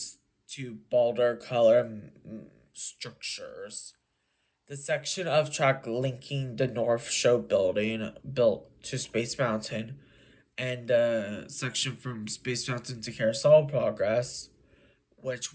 to bolder color structures. The section of track linking the North Show building built to Space Mountain and the section from Space Mountain to Carousel Progress, which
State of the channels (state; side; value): identical; both; correlation 1.00